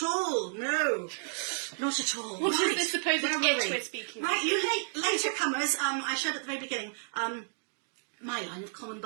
all. No, not at all. What right. is this supposed Where itch were we? we're speaking Right, of? you later comers. I showed at the very beginning. My line of common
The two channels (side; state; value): left; silent; digital silence